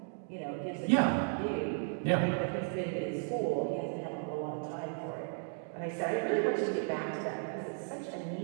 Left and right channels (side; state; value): left; silent; 55 dB below the other